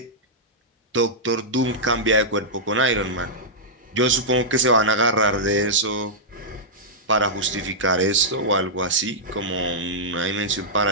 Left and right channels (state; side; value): normal; both; correlation -0.10